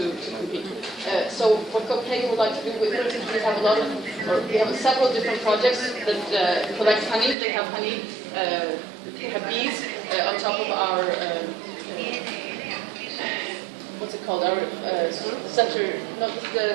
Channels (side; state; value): left; drops out; at 7.4 s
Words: compete. So what Copenhagen would like to do, for instance, we have several different projects that collect honey. They have honey, they have bees on top of our, what's it called, our center, no,